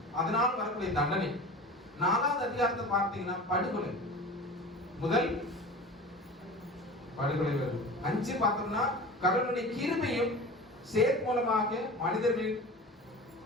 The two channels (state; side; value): normal; both; correlation 0.35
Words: அதனால் வரக்கூடிய தண்டனை. 4வது அதிகாரத்தை பார்த்தீங்கன்னா படுகொலை, முதல் படுகொலை வருது. 5 பார்த்தோம்னா கடவுளுடைய கிருபையும் சேத் மூலமாக மனிதர்களின்